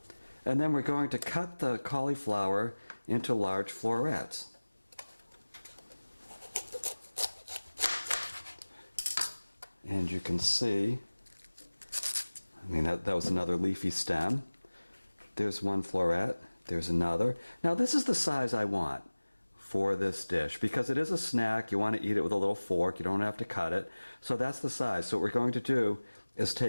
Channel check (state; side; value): inverted; both; correlation -1.00